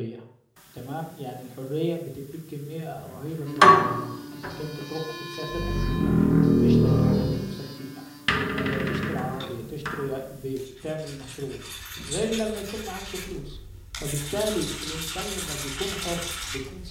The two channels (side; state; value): both; identical; correlation 1.00